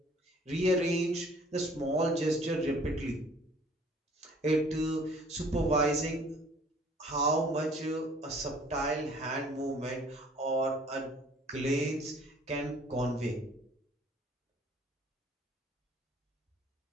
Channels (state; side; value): normal; both; correlation 0.55